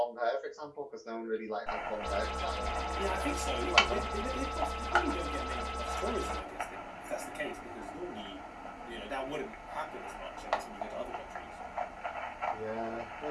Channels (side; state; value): both; identical; correlation 1.00